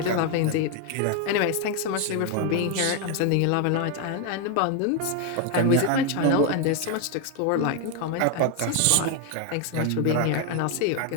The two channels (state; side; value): different; both; correlation 0.01